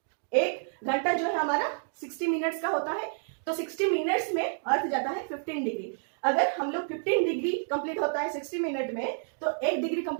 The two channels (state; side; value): silent; left; digital silence